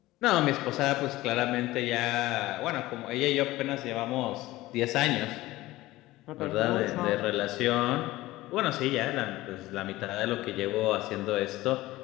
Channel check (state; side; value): quieter; right; 17.8 dB